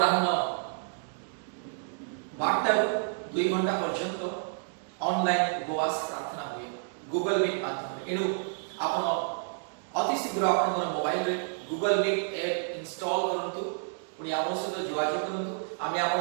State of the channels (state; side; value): silent; left; digital silence